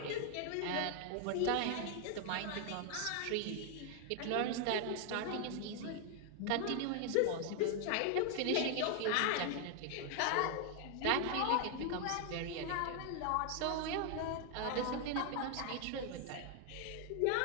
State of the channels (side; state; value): both; different; correlation 0.00